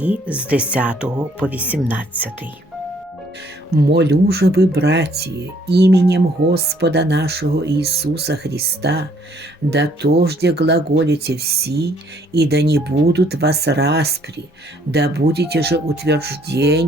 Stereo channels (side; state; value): both; normal; correlation 0.64